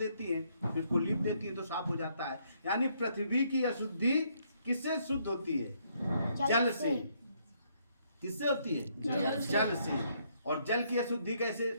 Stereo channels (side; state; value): both; inverted; correlation -0.71